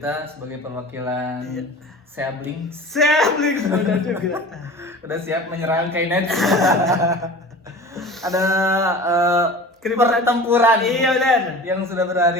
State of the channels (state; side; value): normal; both; correlation 0.38